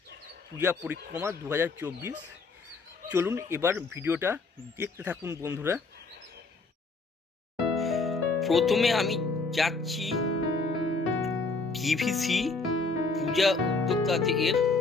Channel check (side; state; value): right; quieter; 3.9 dB